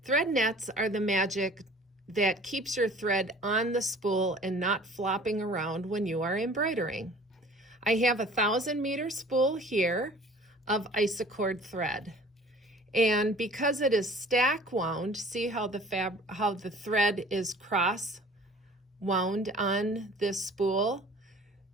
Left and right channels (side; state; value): both; normal; correlation 0.48